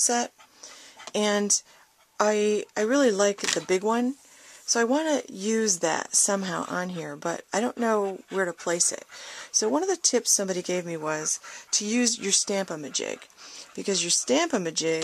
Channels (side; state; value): both; identical; correlation 1.00